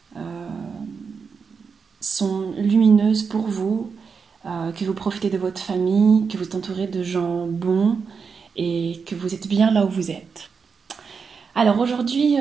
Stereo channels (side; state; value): left; quieter; 5.6 dB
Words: sont lumineuses pour vous, que vous profitez de votre famille, que vous êtes entouré de gens bons et que vous êtes bien là où vous êtes. Alors aujourd'hui,